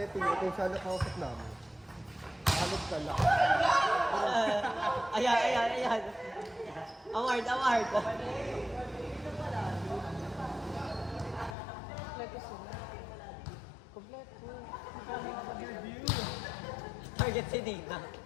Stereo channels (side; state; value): right; drops out; at 11.6 s